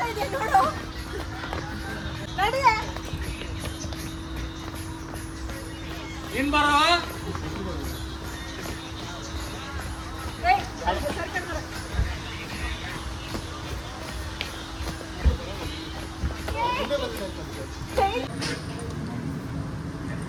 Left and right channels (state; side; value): identical; both; correlation 1.00